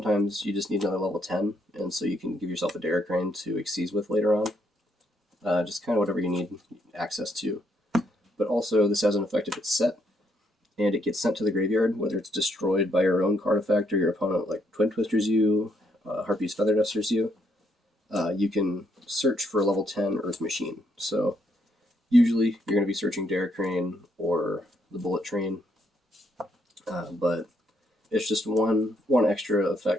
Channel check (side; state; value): both; normal; correlation 0.73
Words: you just need another level 10, and so you can give yourself a Derrick Crane to Xyz with later on. Just kind of whatever you need access to. but also this has an effect if it's set and it gets sent to the graveyard, whether it's destroyed by your own card effect or your opponent like Twin Twisters you, Harpy's Feather Dusters you. You can search for a level 10 Earth Machine. So usually you're going to be searching Derek Crane or the Bullet Train, but it's just one extra